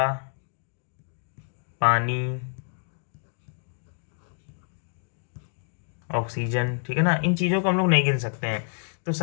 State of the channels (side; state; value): right; silent; 60 dB below the other